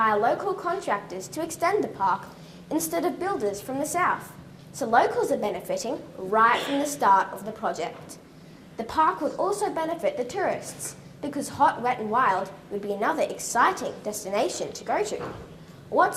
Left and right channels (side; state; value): both; identical; correlation 1.00